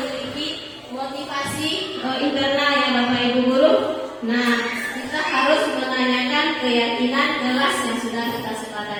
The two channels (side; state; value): both; identical; correlation 1.00